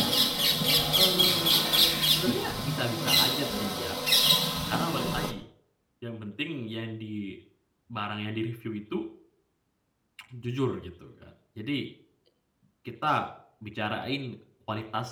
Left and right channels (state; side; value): identical; both; correlation 1.00